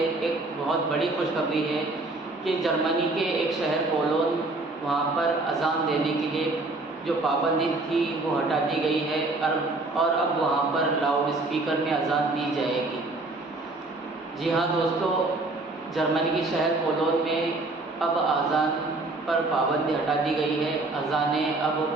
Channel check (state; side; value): quieter; left; 3.1 dB